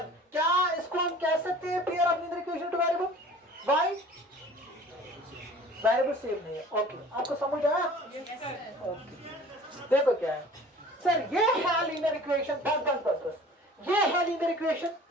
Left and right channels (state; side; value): normal; both; correlation 0.46